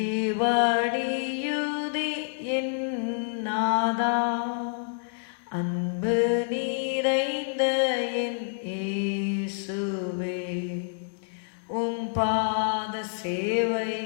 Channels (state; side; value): silent; right; digital silence